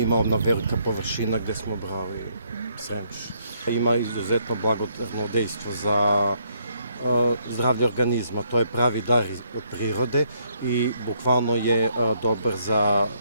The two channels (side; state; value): both; inverted; correlation -0.71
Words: ona velika površina gde smo brali Sremuš. Ima izuzetno blagodárno dejstvo za zdravlje organizma, to je pravi dar od prirode i bukvalno je dobar za